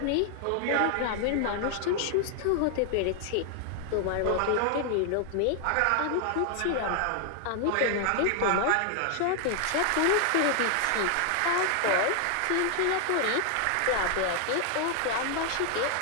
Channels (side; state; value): both; different; correlation 0.00